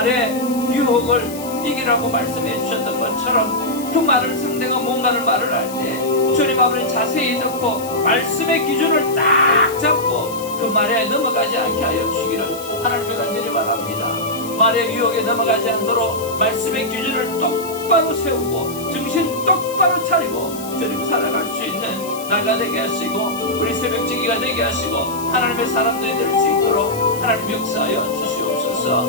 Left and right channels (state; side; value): noise; left; hiss, 14 dB below the sound